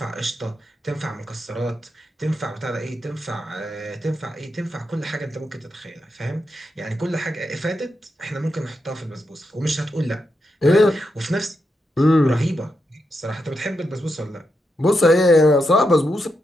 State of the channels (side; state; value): both; normal; correlation 0.85